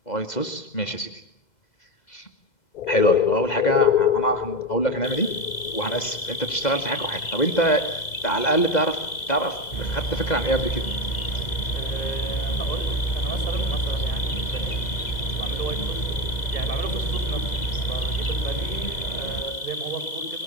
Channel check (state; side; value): late; right; 2.0 ms